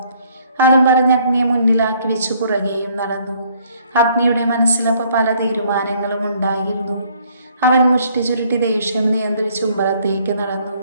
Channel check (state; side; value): inverted; both; correlation -0.63